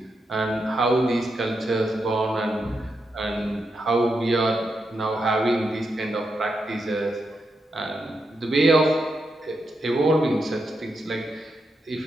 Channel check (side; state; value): both; normal; correlation 0.84